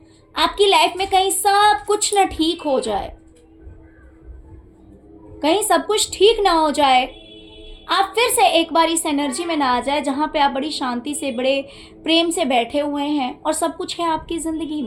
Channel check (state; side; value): identical; both; correlation 1.00